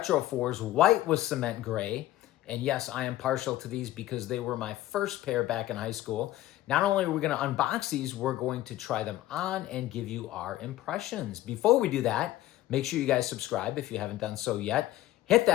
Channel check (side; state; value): right; quieter; 15.0 dB